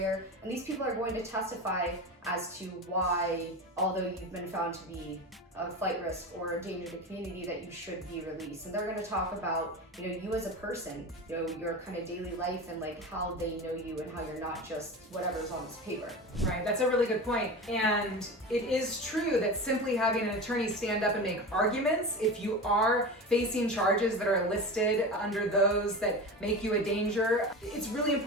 And these people are going to testify as to why, although you've been found to be a flight risk or a danger to the community, that you should be released. And they're going to talk about, you as a person, your kind of daily life and like how they know you and how you're not just whatever's on this paper. Right, that's a really good point. And it is true that simply having an attorney stand up and make arguments, if you are facing charges that are listed under those that make you a danger, it's really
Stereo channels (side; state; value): both; normal; correlation 0.28